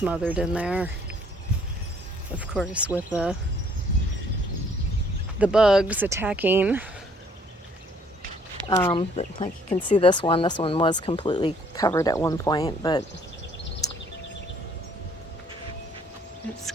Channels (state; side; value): normal; both; correlation 0.62